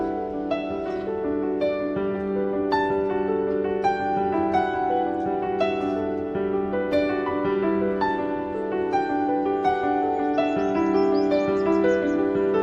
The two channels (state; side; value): identical; both; correlation 1.00